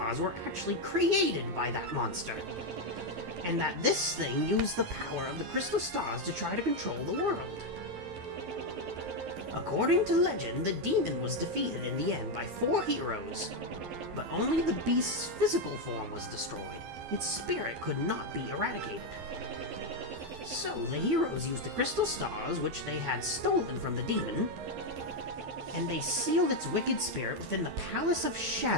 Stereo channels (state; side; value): late; left; 11 ms